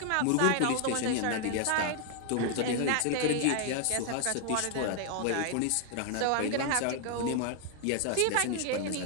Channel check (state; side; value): different; both; correlation 0.00